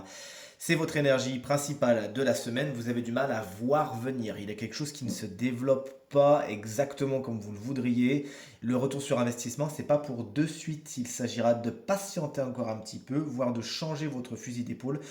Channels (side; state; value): both; identical; correlation 1.00